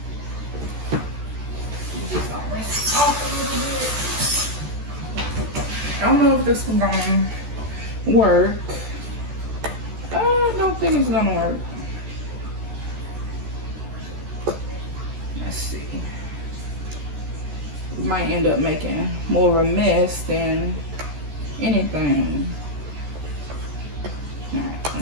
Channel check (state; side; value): late; left; 14 ms